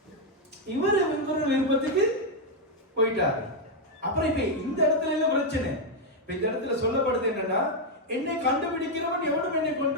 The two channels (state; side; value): normal; both; correlation 0.01